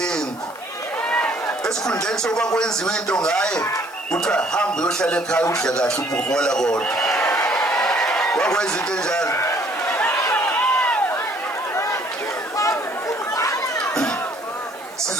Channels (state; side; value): noise; left; hiss, 22 dB below the sound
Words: esikhundleni sokuba kwenziwe into ngaye kuthiwa hamba uyohlala ekhaya udle kahle ubuhola kodwa wakwenza into enjalo